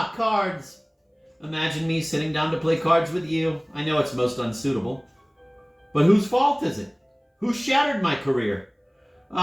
cards! Imagine me sitting down to play cards with you. I know it's most unsuitable. But whose fault is it? Who shattered my career?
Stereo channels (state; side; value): identical; both; correlation 1.00